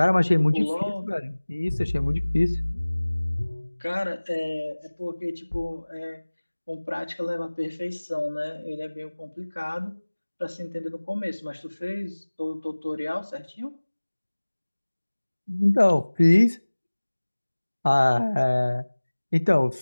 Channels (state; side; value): inverted; both; correlation -1.00